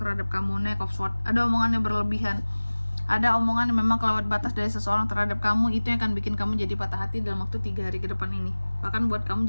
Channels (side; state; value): both; inverted; correlation -1.00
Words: kamu. Knight of Swords, ada omongan yang berlebihan, ada omongan yang memang kelewat batas dari seseorang terhadap kamu, itu yang akan bikin kamu jadi patah hati dalam waktu 3 hari ke depan ini, bahkan buat kamu